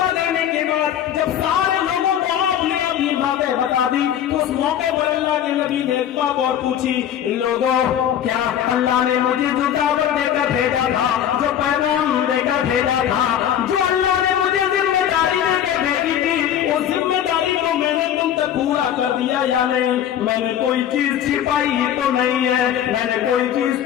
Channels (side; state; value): right; quieter; 10.1 dB